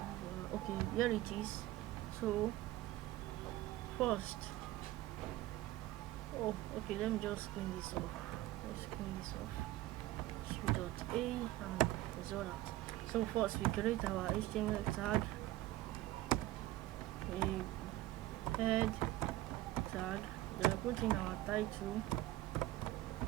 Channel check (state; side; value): quieter; left; 16.1 dB